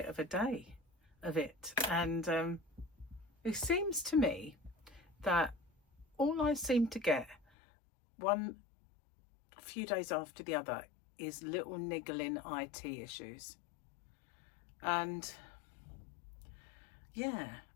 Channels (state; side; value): drops out; right; at 7.4 s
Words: of a day of it, and it seems to me that all I seem to get one few days after the other is little niggling IT issues. And yeah,